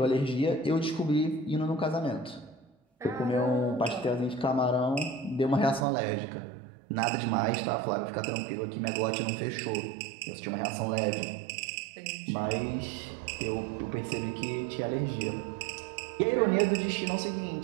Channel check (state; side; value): drops out; left; at 5.9 s